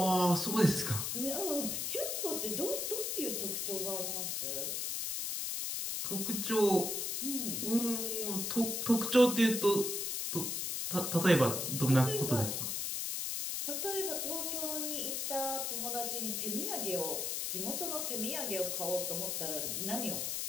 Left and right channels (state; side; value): noise; left; hiss, 1 dB below the sound